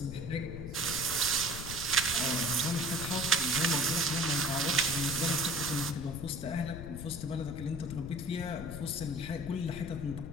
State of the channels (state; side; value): noise; left; rumble, 8 dB below the sound